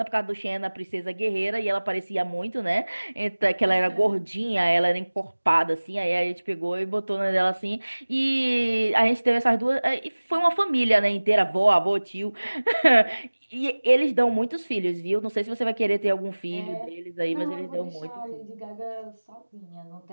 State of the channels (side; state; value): both; inverted; correlation -1.00